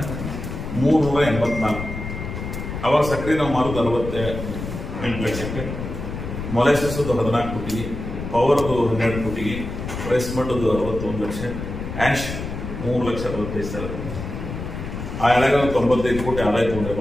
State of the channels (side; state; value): left; noise; rumble, 7 dB below the sound